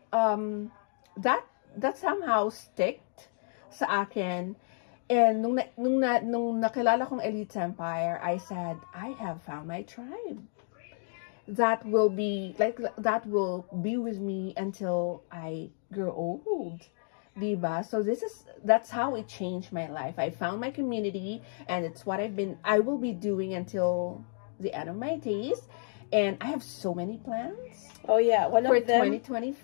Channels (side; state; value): right; silent; 57 dB below the other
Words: that somehow sticked sa akin. And nung nakilala kong Elite Empire, I said, I have found my tribe. That will be with me until I grow old. Diba? So that's how it changed my life. I found my community, and it's what I will be doing until the end of my days. And I have so many plans. Oh yeah, for